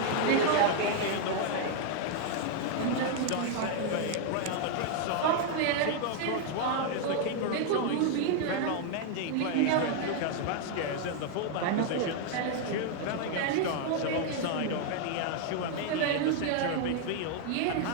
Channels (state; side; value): different; both; correlation 0.00